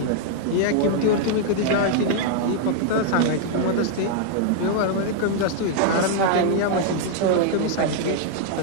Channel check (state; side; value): different; both; correlation -0.01